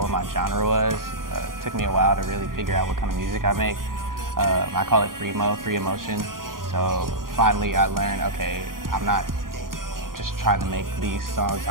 what my genre was. It took me a while to really figure out what kind of music I make. I call it free emotion. So finally I learned, okay, I'm not just trying to make these songs,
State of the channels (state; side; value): late; left; 0.91 ms